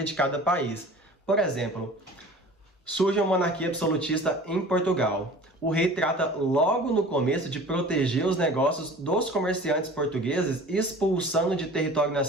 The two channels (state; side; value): normal; both; correlation 0.43